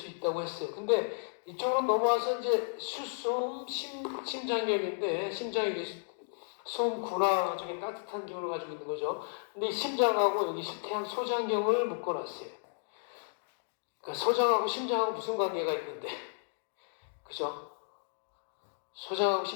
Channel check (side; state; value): right; silent; digital silence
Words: 있다고 했어요. 근데 이쪽으로 넘어와서 이제 수소음 심장경인데 심장이 소음 군화 중에 따뜻한 기운을 가지고 있는 거죠. 근데 이 심장하고 여기 태양 소장경을 묶어놨어요. 그러니까 소장하고 심장하고 무슨 관계가 있는데, 그죠? 소장하고